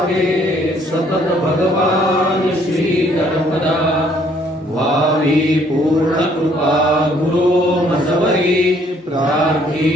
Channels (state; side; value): normal; both; correlation 0.64